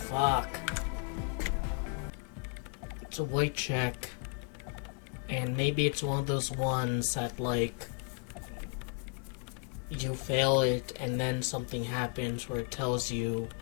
It's a white check. And maybe it's one of those ones that, like, you fail it and then something happens where it tells you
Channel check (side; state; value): right; quieter; 34.5 dB